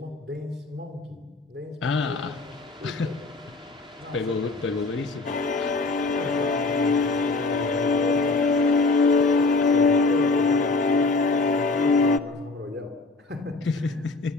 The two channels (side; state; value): right; quieter; 3.5 dB